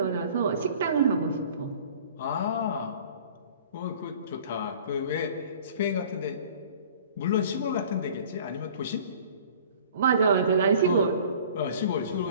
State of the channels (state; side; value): inverted; both; correlation -0.47